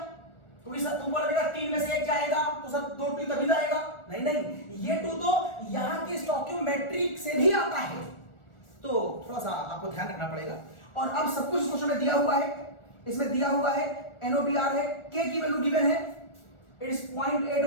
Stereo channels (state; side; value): late; right; 1.4 ms